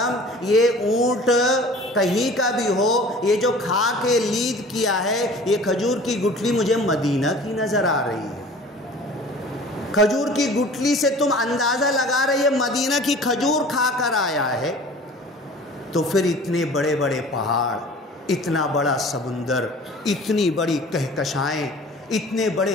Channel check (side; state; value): both; normal; correlation 0.45